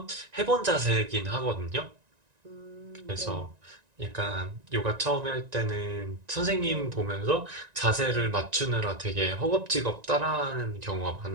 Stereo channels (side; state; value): left; late; 1.9 ms